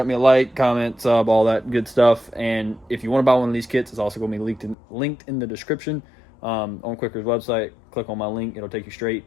me a like, comment, sub, all that good stuff. And if you want to buy one of these kits, it's also going to be linked in the description on Quicker's website. Click on my link. It'll take you straight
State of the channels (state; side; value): drops out; right; at 4.8 s